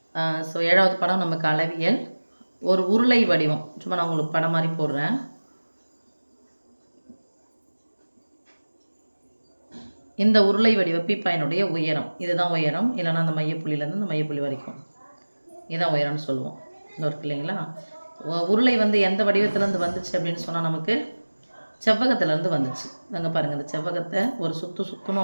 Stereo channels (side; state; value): both; inverted; correlation -1.00